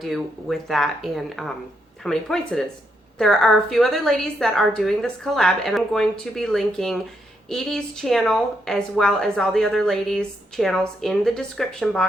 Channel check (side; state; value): both; normal; correlation 0.79